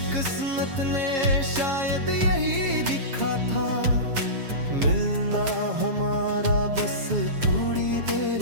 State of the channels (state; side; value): late; left; 7.3 ms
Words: किस्मत ने शायद यही लिखा था, मिलना हमारा बस थोड़ी